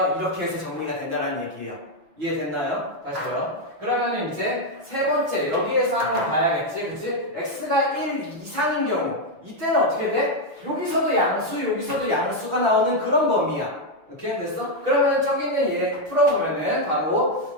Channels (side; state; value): left; late; 6.4 ms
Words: 이렇게 해서 정리가 된다는 얘기예요. 이해됐나요? 다시요. 그러면 이제 세 번째 여기에서 한번 봐야겠지, 그치? x가 1 이상인 경우 이때는 어떻게 돼? 여기서도 양수, 여기서도 양수가 나오는 그런 범위야. 이렇게 됐어? 그러면 저기는 얘 풀어보면은